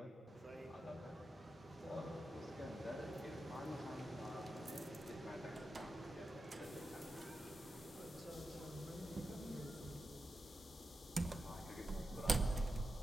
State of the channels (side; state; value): both; normal; correlation 0.90